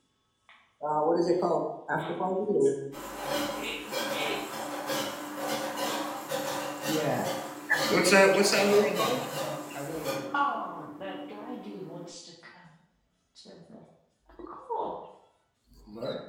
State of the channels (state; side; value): identical; both; correlation 1.00